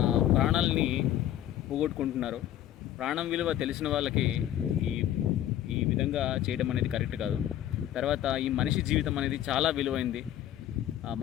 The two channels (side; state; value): right; quieter; 12.0 dB